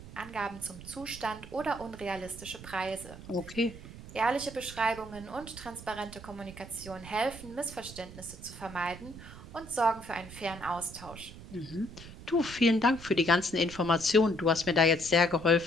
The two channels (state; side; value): noise; right; rumble, 15 dB below the sound